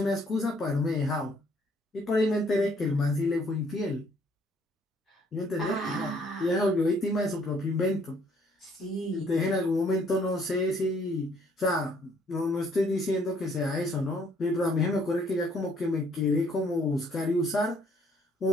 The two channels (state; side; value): normal; both; correlation 0.64